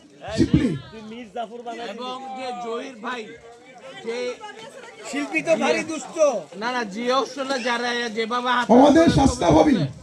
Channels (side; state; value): both; identical; correlation 1.00